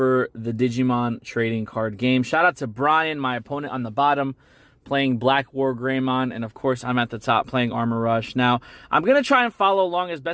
the Digimon trading card game. Shout out to Brian, my opponent on the bottom, playing Blackwargreymon, and of course I'm at the top playing Armor Rush. Now, I'm going to try and follow along as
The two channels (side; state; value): both; identical; correlation 1.00